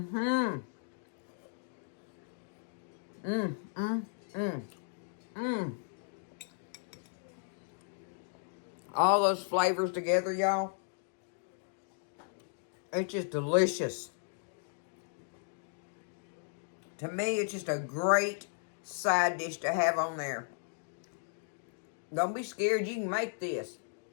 Mmm. Mmm. Mmm. Mmm. All those flavors together, y'all. It's just delicious. To me, it's just a great side dish to have on there. Don't be scared. You can make this.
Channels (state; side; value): silent; right; digital silence